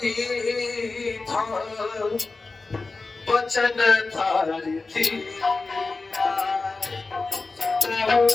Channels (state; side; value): quieter; right; 3.7 dB